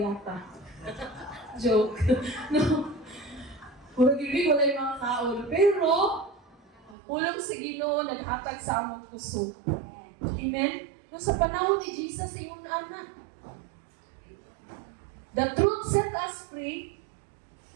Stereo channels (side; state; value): left; drops out; at 7.0 s